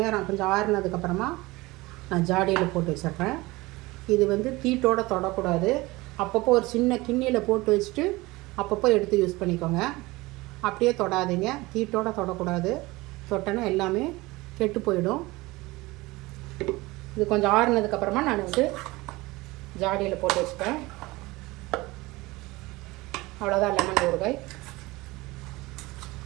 கொஞ்சம் ஆறுனதுக்கப்புறமா நான் ஜாடியில் போட்டு வச்சிடுறேன். இது வந்து தீட்டோடு தொடக்கூடாது. அப்பப்போ ஒரு சின்ன கிண்ணியில் போட்டு வச்சுட்டு அப்பப்போ எடுத்து யூஸ் பண்ணிக்கோங்க. அப்படியே தொடாதீங்க, தீட்டோடு தொடக்கூடாது. தொட்டனா எல்லாமே கெட்டு போயிடும். இது கொஞ்சம் ஆறுனதுக்கப்புறமா நான் வந்து ஜாடியில் போட்டு வச்சுப்பேன். அவ்வளோதான் லெமன் ஊறுகாய்.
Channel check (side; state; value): left; quieter; 21.3 dB